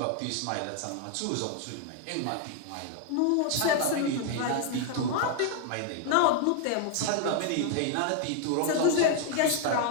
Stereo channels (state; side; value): different; both; correlation 0.00